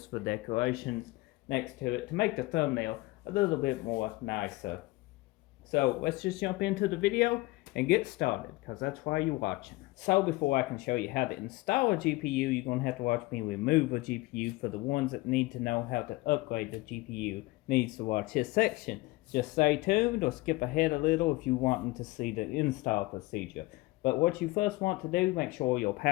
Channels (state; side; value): quieter; right; 21.1 dB